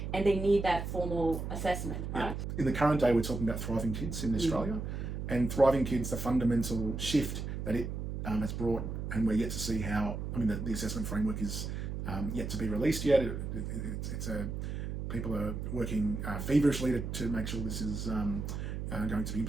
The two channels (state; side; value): noise; right; hum, 4 dB below the sound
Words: and they need that formal assessment, right? In the current day, we're talking about Thriving Kids in Australia, and Thriving Kids, the fundamental shift that it has brought, and we're yet to see how, the assessment framework is yet to be released yet. People are working feverishly to make sure this is going to be